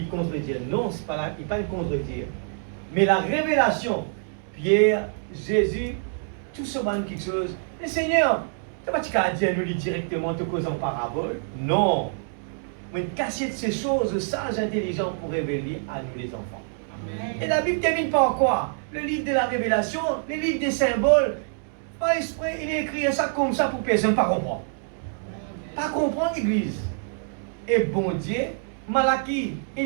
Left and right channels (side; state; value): left; silent; digital silence